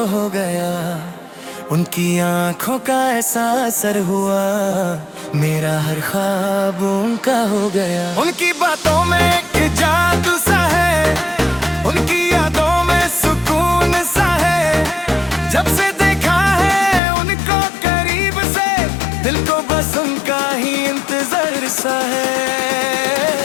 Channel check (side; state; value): right; drops out; at 17.0 s